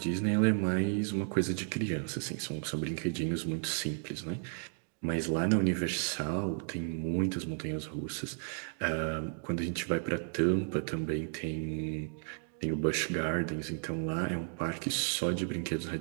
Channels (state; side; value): silent; left; 55 dB below the other